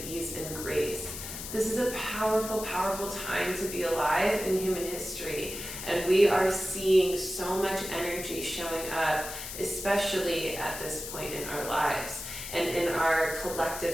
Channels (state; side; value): noise; left; hiss, 8 dB below the sound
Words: ease and grace. This is a powerful time to be alive in human history, and we are seeing so much energy showing up, especially at this point in our lives and in our